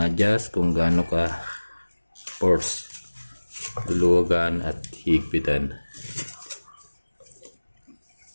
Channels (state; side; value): inverted; both; correlation -1.00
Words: kung gaano ka force. Luluwagan at higpitan.